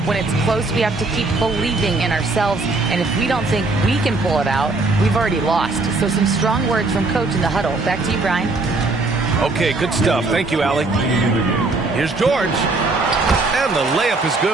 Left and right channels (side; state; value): left; quieter; 3.4 dB